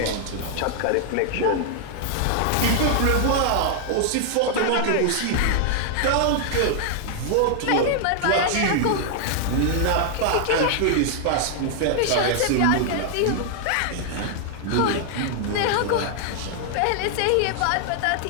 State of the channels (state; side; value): different; both; correlation 0.00